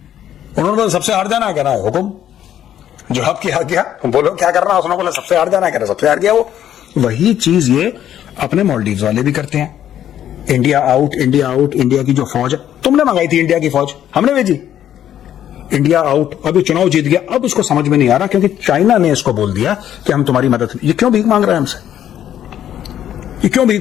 बोला सबसे हार जाना, कह रहा है हुकुम, जवाब किया गया, बोलो क्या करना। उसने बोला सबसे हार जाना, कह रहा सबसे हार गया वो। वही चीज ये अपने मालदीव्स वाले भी करते हैं। India out, India out. India की जो फौज है, तुमने मंगाई थी इंडिया की फौज, हमने भेजी। इंडिया आउट, अभी चुनाव जीत गया, अब इसको समझ में नहीं आ रहा क्योंकि चाइना ने इसको बोल दिया कि हम तुम्हारी मदद। ये क्यों भीख मांग रहा है हमसे? ये क्यों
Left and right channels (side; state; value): right; quieter; 10.8 dB